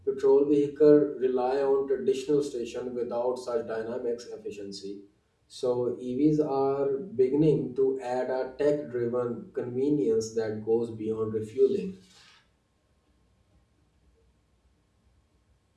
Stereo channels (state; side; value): identical; both; correlation 1.00